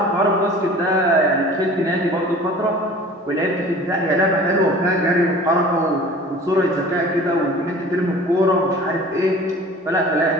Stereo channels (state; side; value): normal; both; correlation 0.44